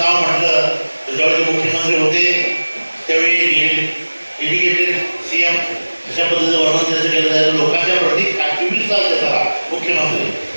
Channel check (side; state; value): both; inverted; correlation -1.00